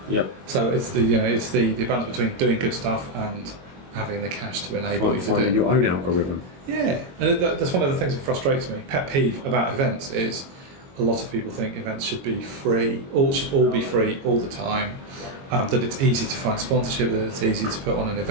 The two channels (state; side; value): late; left; 22 ms